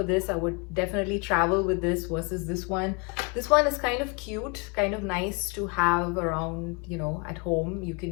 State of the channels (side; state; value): right; quieter; 31.6 dB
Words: this. I would definitely travel with this versus this one. This one is kind of cute, kind of nice to have around, you know, at home. You